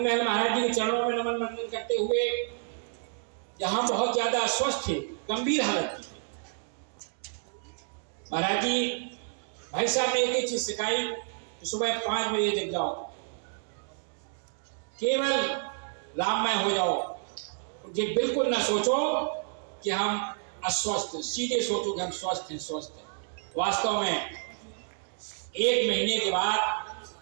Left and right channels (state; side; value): silent; left; digital silence